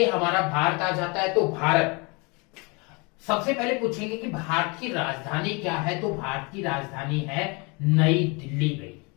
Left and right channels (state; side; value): quieter; right; 29.7 dB